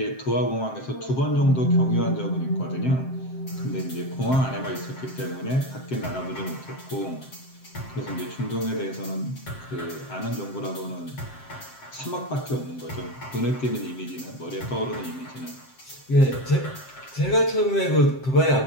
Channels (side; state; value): right; late; 7.7 ms